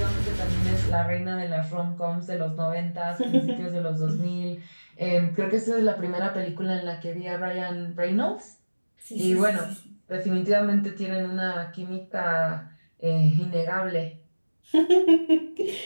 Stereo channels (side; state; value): both; inverted; correlation -1.00